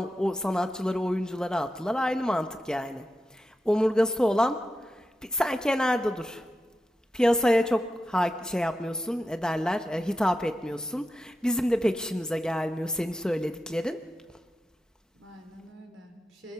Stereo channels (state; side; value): normal; both; correlation 0.90